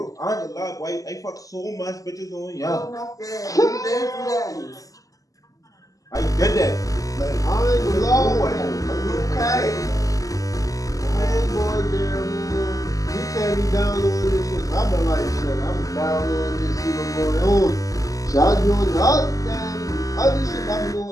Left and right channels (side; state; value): right; late; 0.17 ms